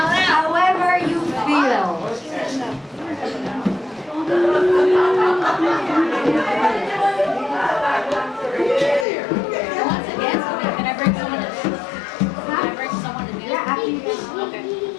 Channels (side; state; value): right; drops out; at 9.1 s